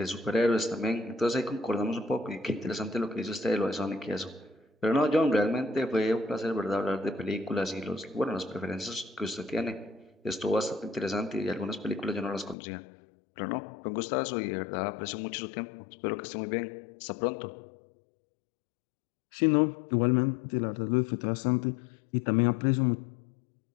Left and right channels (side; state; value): right; drops out; at 12.6 s